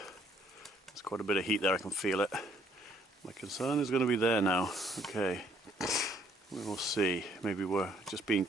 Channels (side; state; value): both; normal; correlation 0.65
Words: quite a bit of heat there, I can feel it. My concern is going to be there now. Okay. We will see. Maybe we're just being